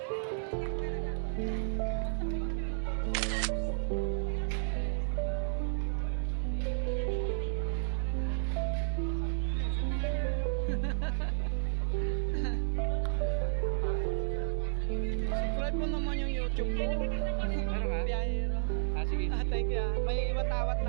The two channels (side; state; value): left; silent; digital silence